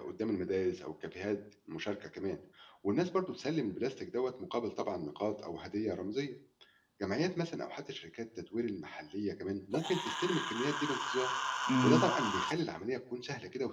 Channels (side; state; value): both; identical; correlation 1.00